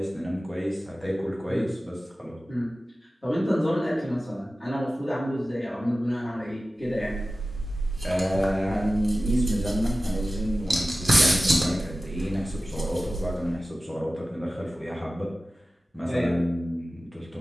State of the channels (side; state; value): both; normal; correlation 0.96